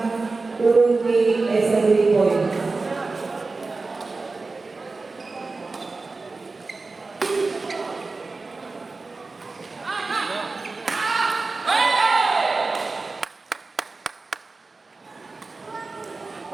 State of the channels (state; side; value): quieter; left; 3.8 dB